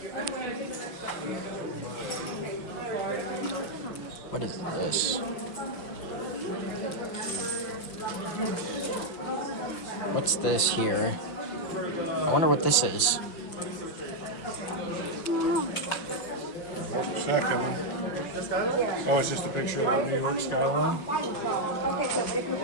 What is this? What's this here? I wonder what this is. Check them. Oh, it's just a picture of the New York skyline.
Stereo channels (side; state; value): right; late; 5.8 ms